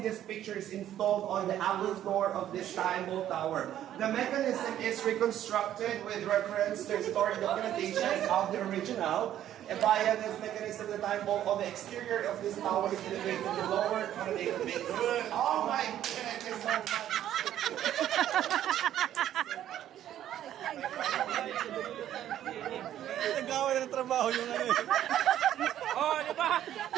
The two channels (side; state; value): left; quieter; 11.6 dB